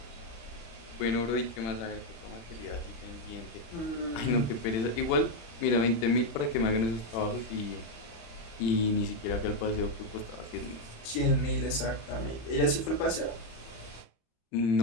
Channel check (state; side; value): late; right; 35 ms